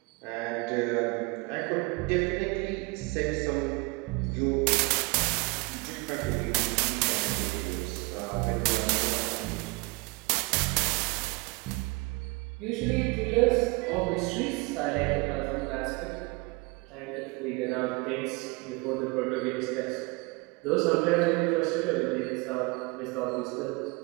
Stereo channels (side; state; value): left; quieter; 27.1 dB